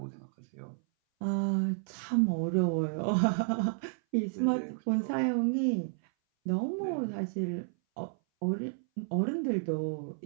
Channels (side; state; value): left; silent; 57 dB below the other